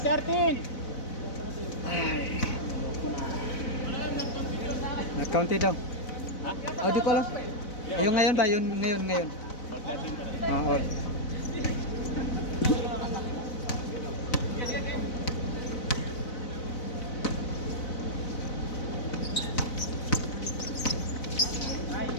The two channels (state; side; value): late; right; 4.0 ms